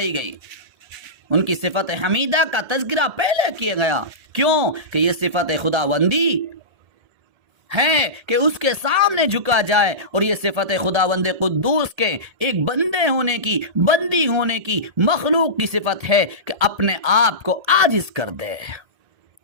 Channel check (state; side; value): late; left; 1.7 ms